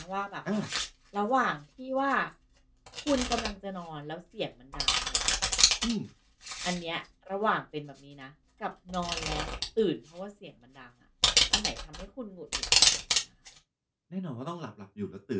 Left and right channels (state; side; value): identical; both; correlation 1.00